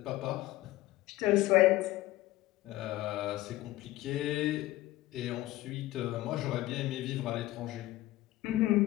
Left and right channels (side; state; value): right; quieter; 16.8 dB